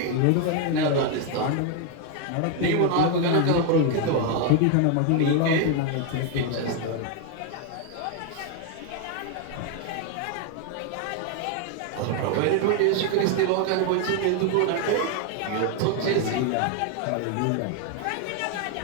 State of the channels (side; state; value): both; different; correlation 0.01